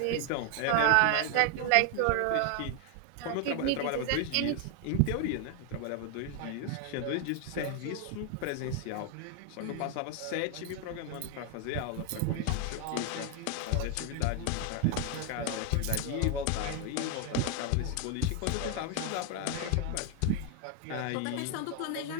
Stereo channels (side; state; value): both; different; correlation 0.01